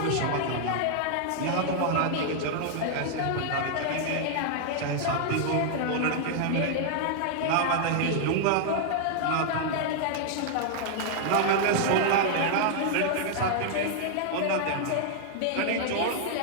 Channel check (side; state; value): both; different; correlation -0.01